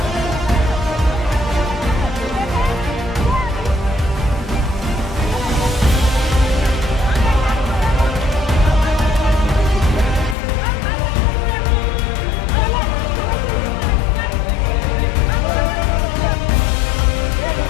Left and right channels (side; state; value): right; drops out; at 10.4 s